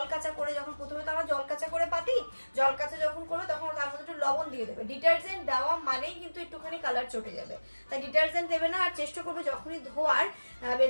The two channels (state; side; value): inverted; both; correlation -1.00